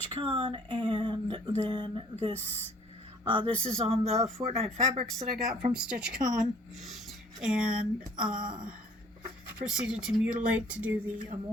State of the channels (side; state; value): both; normal; correlation 0.56